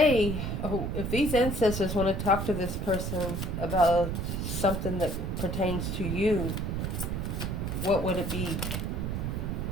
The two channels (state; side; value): noise; right; rumble, 2 dB below the sound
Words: ancestors want to talk to this person about something that pertains to you, what would it be?